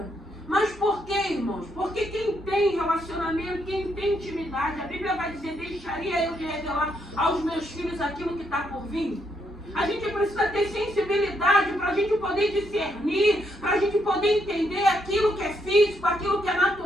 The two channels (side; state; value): both; normal; correlation 0.76